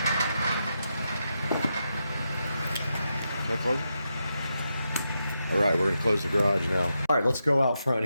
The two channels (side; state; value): both; inverted; correlation -0.86